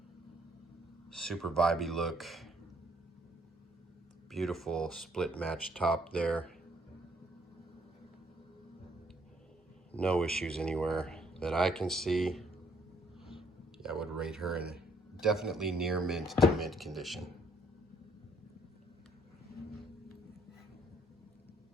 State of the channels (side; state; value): both; normal; correlation 0.65